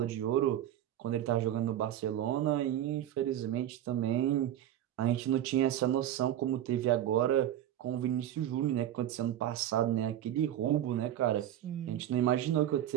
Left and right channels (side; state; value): left; quieter; 11.7 dB